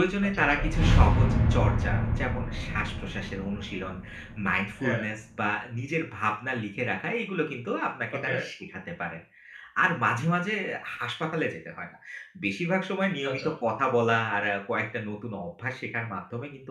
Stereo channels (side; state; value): both; identical; correlation 1.00